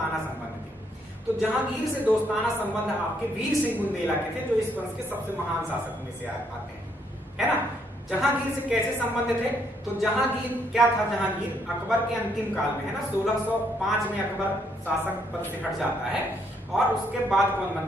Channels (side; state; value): both; normal; correlation 0.71